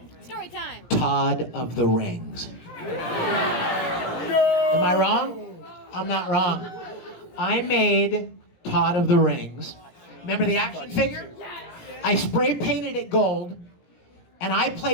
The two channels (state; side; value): late; right; 17 ms